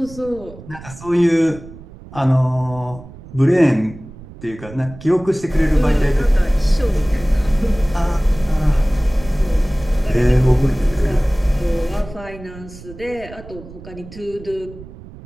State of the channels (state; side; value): noise; right; rumble, 17 dB below the sound